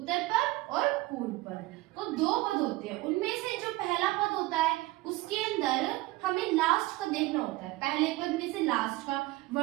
पद और पूर्व पद। तो 2 पद होते हैं, उनमें से जो पहला पद होता है उसके अंदर हमें लास्ट का देखना होता है। पहले पद में से लास्ट का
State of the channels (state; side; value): quieter; left; 19.9 dB